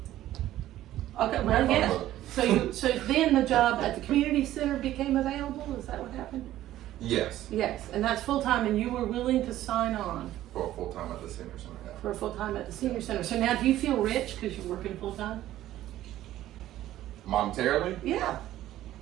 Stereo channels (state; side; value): quieter; left; 13.8 dB